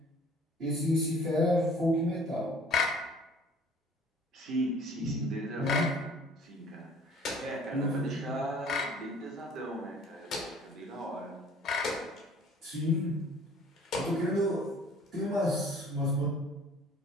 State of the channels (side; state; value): both; normal; correlation 0.52